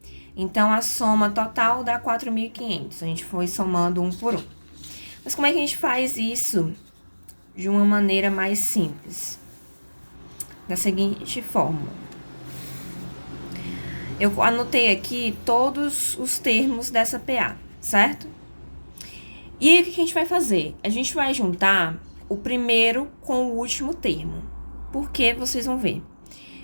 Então, a soma total dá 4.500. A gente foi somando um por um. Mas como é que a gente faz isso de uma maneira mais simples? Da seguinte forma. Eu anotei aqui todos os termos dessa PA, certo? E aí, o que a gente vai fazer? A gente vai juntar o primeiro com o último termo. Por que vocês vão ver?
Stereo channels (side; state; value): both; inverted; correlation -1.00